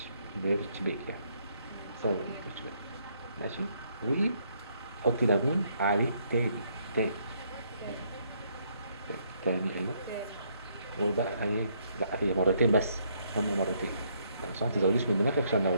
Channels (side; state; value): both; inverted; correlation -0.71